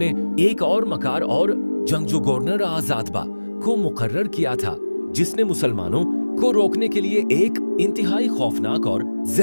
एक और मकार और जंगजू गवर्नर आजादबा को मुकर्रर किया था, जिसने मुसलमानों को रोकने के लिए एक इंतहाई खौफनाक और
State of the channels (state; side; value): inverted; both; correlation -1.00